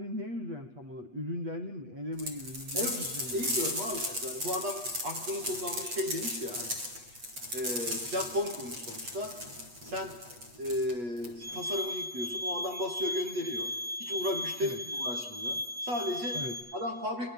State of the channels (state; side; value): late; left; 8.3 ms